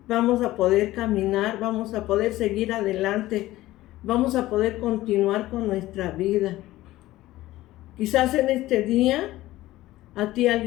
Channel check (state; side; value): quieter; right; 16.5 dB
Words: vamos a poder caminar, vamos a poder seguir adelante, vamos a poder continuar con nuestra vida. Quizás en este día a ti